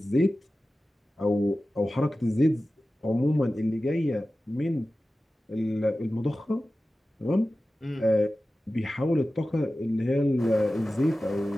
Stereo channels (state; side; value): normal; both; correlation 0.95